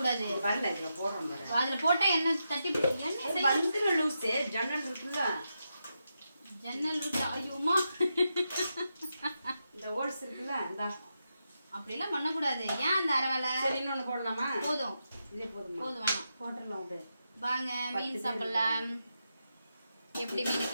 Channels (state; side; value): inverted; both; correlation -0.86